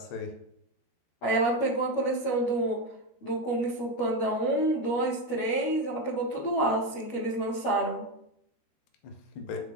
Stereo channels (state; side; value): late; right; 13 ms